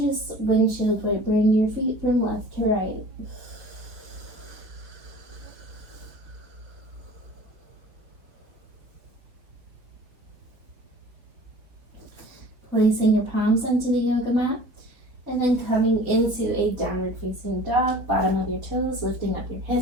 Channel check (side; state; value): left; late; 4.0 ms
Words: just windshield wiper, bring your feet from left to right. Placing your palms onto the yoga mat. And then coming into a downward facing dog, bottom of your toes, lifting up your